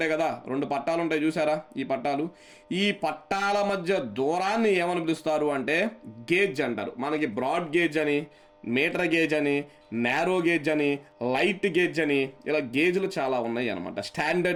కదా, 2 పట్టాలు ఉంటాయి చూసారా? ఈ పట్టాల మధ్య దూరాన్ని ఏమని పిలుస్తారు అంటే గేజ్ అంటారు. మనకి బ్రాడ్ గేజ్ అని, మీటర్ గేజ్ అని, నేరో గేజ్ అని, లైట్ గేజ్ అని, ఇలా గేజ్లు చాలా ఉన్నాయి అనమాట.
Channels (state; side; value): identical; both; correlation 1.00